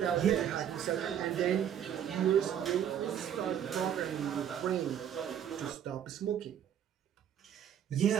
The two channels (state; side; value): quieter; left; 9.5 dB